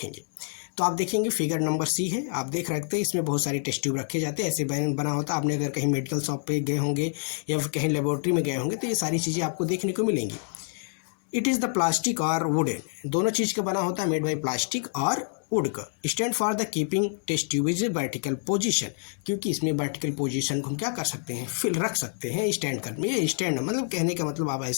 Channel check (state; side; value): silent; right; 59 dB below the other